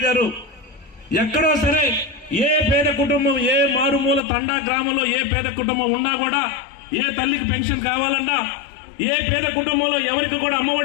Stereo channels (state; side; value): drops out; right; at 4.2 s